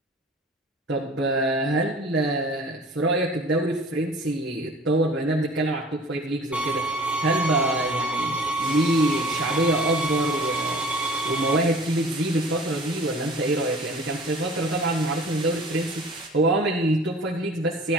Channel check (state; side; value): normal; both; correlation 0.46